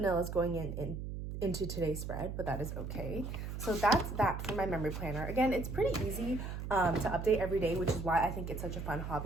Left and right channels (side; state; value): right; noise; hum, 6 dB below the sound